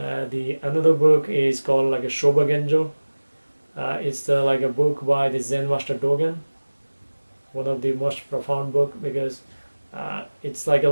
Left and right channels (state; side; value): inverted; both; correlation -1.00